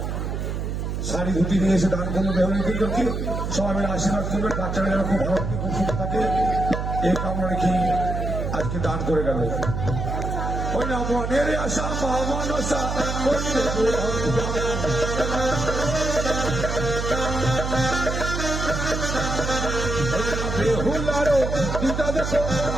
শাড়ি ধুতি নিয়ে এসে দান করলো বেহুলা লক্ষ্মীধরকে। সবাই মিলে আশীর্বাদ করবে, বাচ্চারা যেন খুব ভালো থাকে, খুব সুন্দর থাকে, এই কামনা রেখে আজকে দান করে গেল। ওই না মনের আশা মা মনসা করিবে বেহুলারও দিদা দেখো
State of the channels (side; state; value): right; noise; hum, 3 dB below the sound